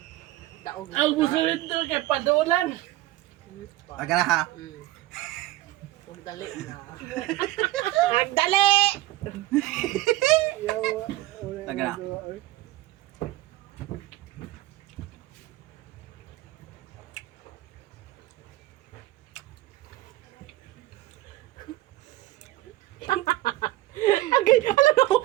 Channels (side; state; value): left; quieter; 16.7 dB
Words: Daog mo. Ang gusto nito kay padulan. Aga na ha. Magdali na. Magdali! Aga na. Agay, alam mo